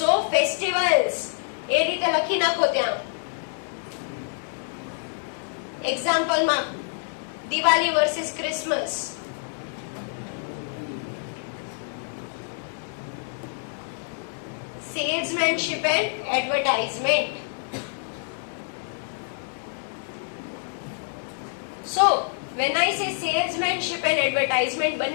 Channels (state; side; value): silent; right; 58 dB below the other